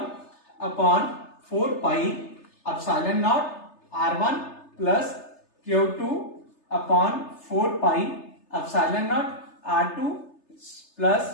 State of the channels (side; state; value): right; late; 3.3 ms